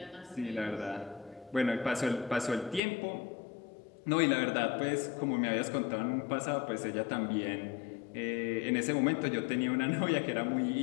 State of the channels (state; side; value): drops out; right; at 2.8 s